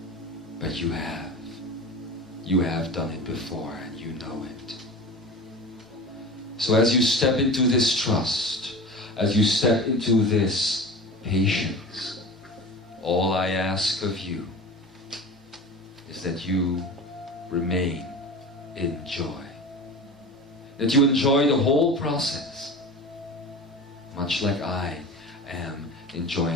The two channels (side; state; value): both; normal; correlation 0.33